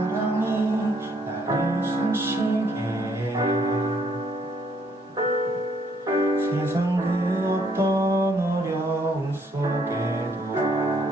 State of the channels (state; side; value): normal; both; correlation 0.68